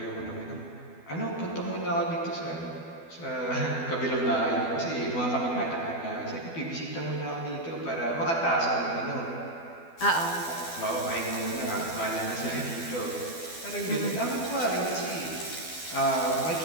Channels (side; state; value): right; late; 12 ms